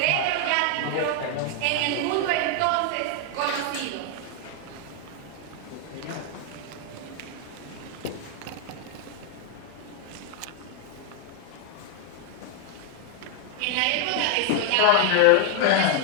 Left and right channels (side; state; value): both; different; correlation 0.00